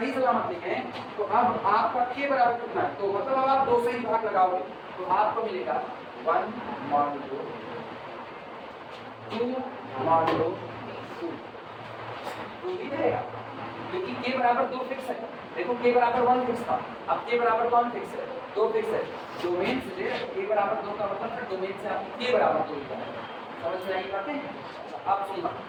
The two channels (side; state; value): both; identical; correlation 1.00